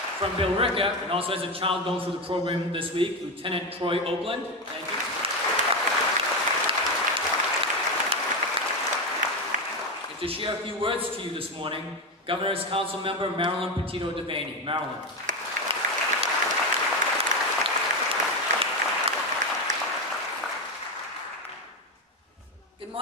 From Billerica, and also as a child going through the program this week, Lieutenant Troy Oakland, thank you. And to share a few words to you this morning, Governor's Council Member Marilyn Petito Devaney. Marilyn. Good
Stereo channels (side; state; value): both; normal; correlation 0.13